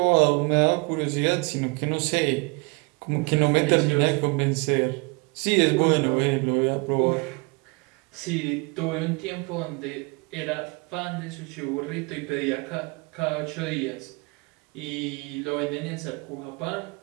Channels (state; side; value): quieter; left; 29.1 dB